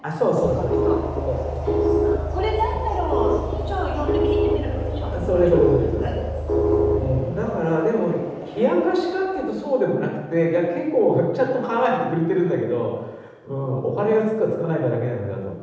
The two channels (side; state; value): both; identical; correlation 1.00